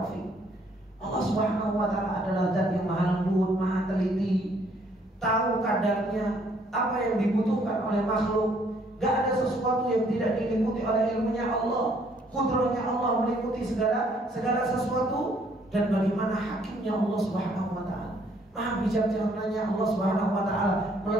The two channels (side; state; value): both; normal; correlation 0.64